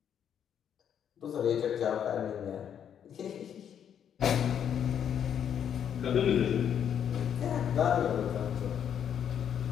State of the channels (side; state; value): right; quieter; 8.8 dB